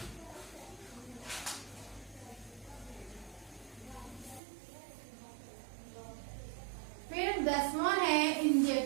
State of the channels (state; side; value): drops out; left; at 4.4 s